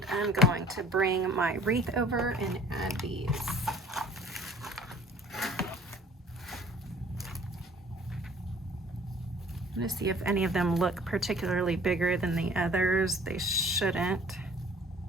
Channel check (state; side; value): normal; both; correlation 0.52